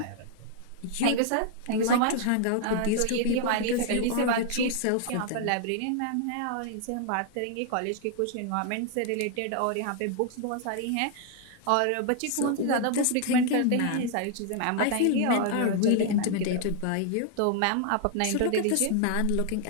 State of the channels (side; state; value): both; different; correlation 0.00